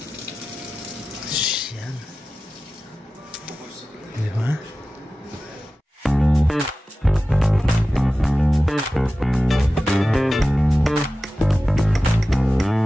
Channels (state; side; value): normal; both; correlation 0.95